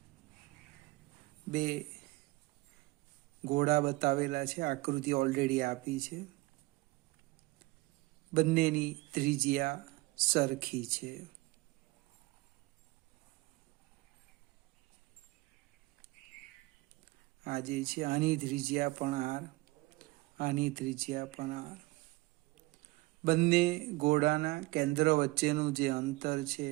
બે ઘોડા બતાવેલા છે, આકૃતિ ઓલરેડી આપી છે. બંનેની ત્રિજ્યા સરખી છે. આ જે છે આની ત્રિજ્યા પણ આર, આની ત્રિજ્યા પણ આર. બંને ઘોડાના કેન્દ્ર વચ્ચેનું જે અંતર છે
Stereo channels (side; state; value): left; quieter; 21.5 dB